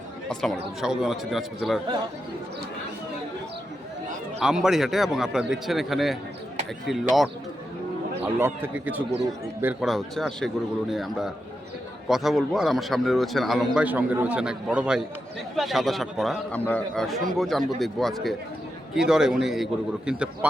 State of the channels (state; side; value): normal; both; correlation 0.87